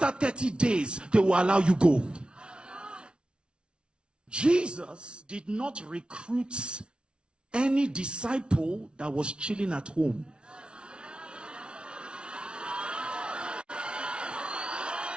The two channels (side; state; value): left; late; 0.057 ms